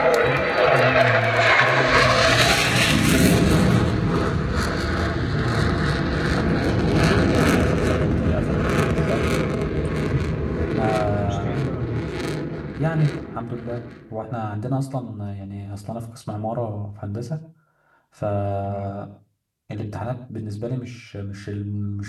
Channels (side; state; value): both; identical; correlation 1.00